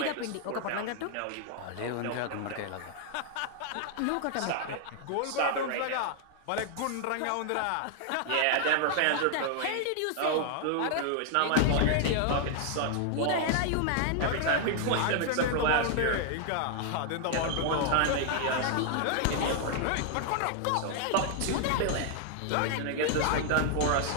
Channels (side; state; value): both; different; correlation 0.00